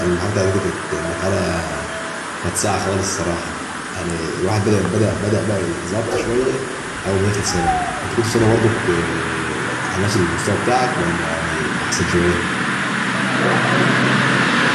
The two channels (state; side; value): identical; both; correlation 1.00